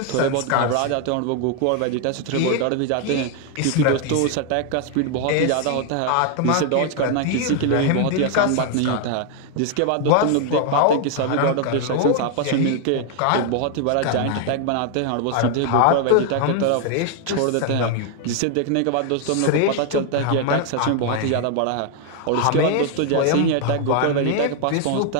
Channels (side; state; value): both; different; correlation 0.00